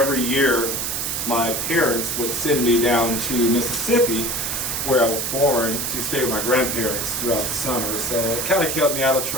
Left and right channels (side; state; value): right; noise; hiss, 1 dB below the sound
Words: year my parents would send me down to Mississippi, where I was born, to stay with my grandparents throughout the summer. So it kind of kept me out of